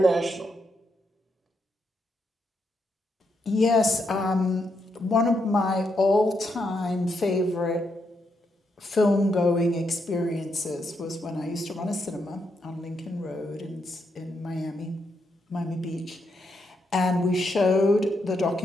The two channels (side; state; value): both; normal; correlation 0.80